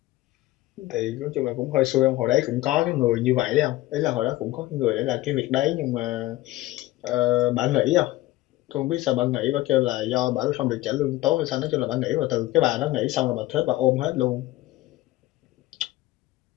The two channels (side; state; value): right; quieter; 17.3 dB